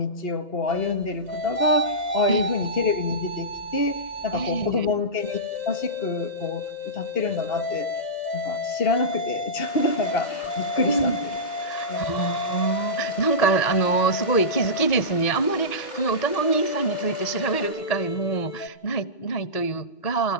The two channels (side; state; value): right; late; 1.8 ms